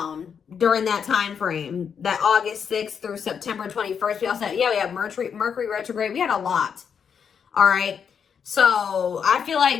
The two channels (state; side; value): quieter; right; 7.1 dB